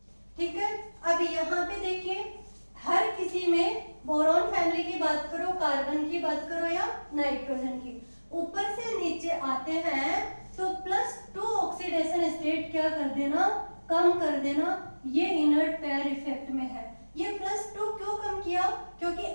ठीक है, अब यहाँ पे देखिए हर किसी में बोरॉन फैमिली की बात करो, कार्बन की बात करो या नाइट्रोजन की, ऊपर से नीचे आते हैं तो +2 ऑक्सीडेशन स्टेट क्या कर देना, कम कर देना। ये इनर्ट पेयर इफेक्ट में है। ये +2 क्यों कम किया, क्योंकि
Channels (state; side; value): inverted; both; correlation -1.00